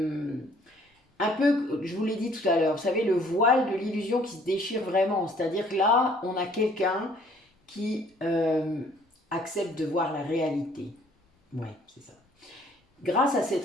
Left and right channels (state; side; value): normal; both; correlation 0.59